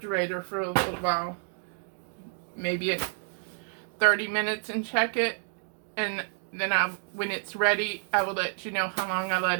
for a little while. Maybe 30 minutes and check it. And then when it's ready, I will let you know how long I let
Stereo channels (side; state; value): left; silent; 56 dB below the other